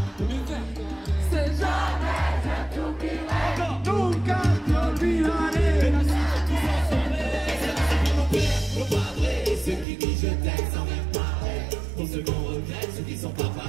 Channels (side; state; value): left; drops out; at 9.9 s